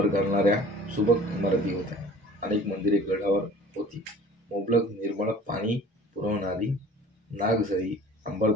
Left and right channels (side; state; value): both; normal; correlation 0.46